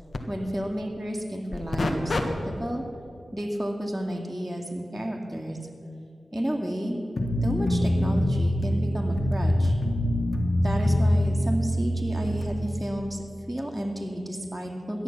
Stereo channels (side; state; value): both; normal; correlation 0.95